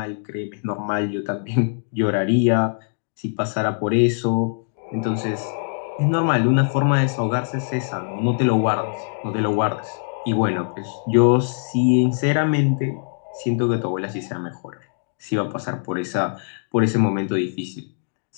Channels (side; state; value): right; silent; digital silence